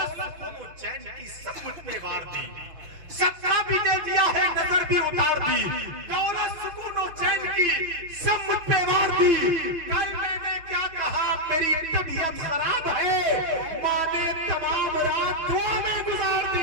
سکون و چین کی سب مجھ پہ وار دی۔ 17 بھی دے دیا ہے، نظر بھی اتار دی، دولت سکون و چین کی سب مجھ پہ وار دی۔ کل میں نے کیا کہا میری طبیعت خراب ہے، ماں نے تمام رات دعا میں گزار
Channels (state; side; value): late; left; 6.1 ms